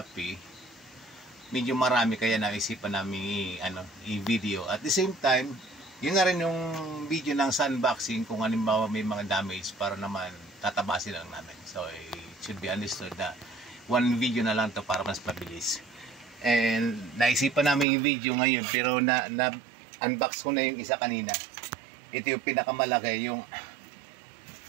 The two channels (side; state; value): left; drops out; at 17.9 s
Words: Medyo marami kaya naisipan namin i-video. At the same time, yun na rin yung video ng unboxing kung halimbawa may mga damage para naman tatabasin lang namin. So it should be understood na one video na lang to para mas mabilis. And naisipan namin yung video ngayon pero na-unbox ko na yung isa kanina. Ito yung pinakamalaki, yung